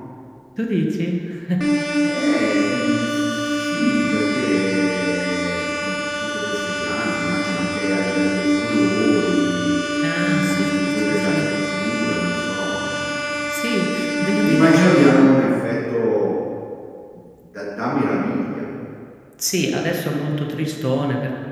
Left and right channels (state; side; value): identical; both; correlation 1.00